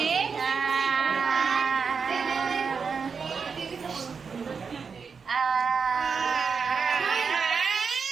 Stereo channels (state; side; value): quieter; left; 5.6 dB